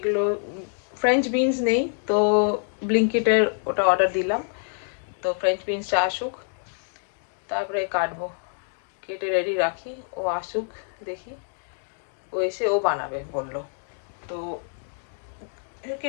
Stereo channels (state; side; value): silent; right; 61 dB below the other